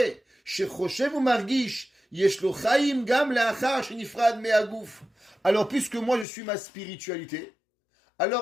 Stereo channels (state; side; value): drops out; right; at 6.2 s